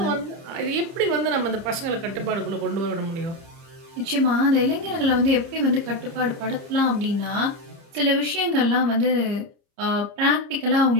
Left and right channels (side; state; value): left; late; 30 ms